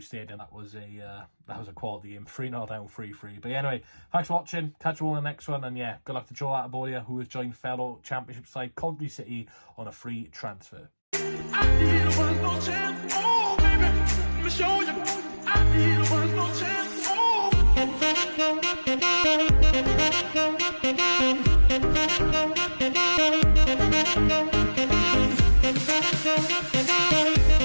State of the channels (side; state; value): both; inverted; correlation -1.00